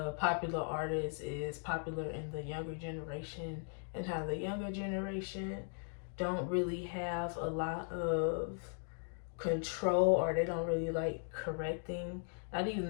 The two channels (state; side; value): silent; right; 52 dB below the other